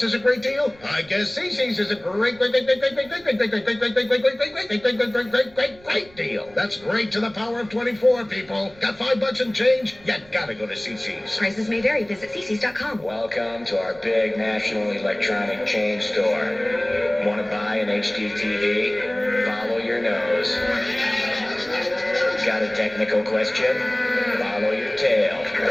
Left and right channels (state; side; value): noise; right; rumble, 25 dB below the sound